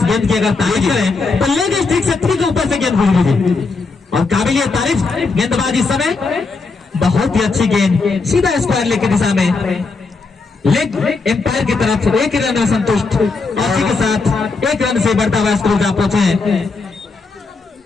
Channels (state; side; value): quieter; right; 4.1 dB